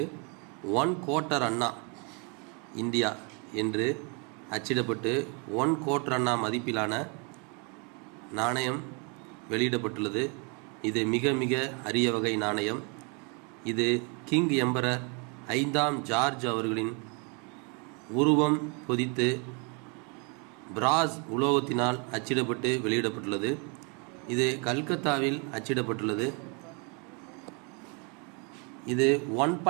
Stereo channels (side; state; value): left; quieter; 34.2 dB